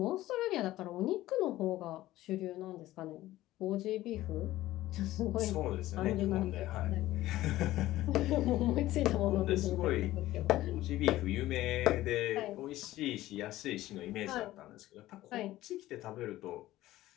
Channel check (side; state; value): right; quieter; 15.8 dB